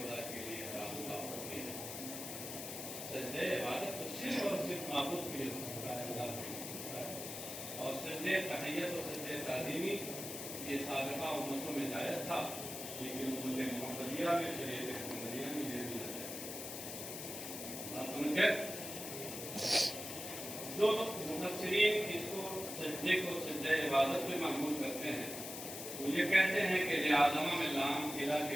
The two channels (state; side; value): noise; left; hiss, 7 dB below the sound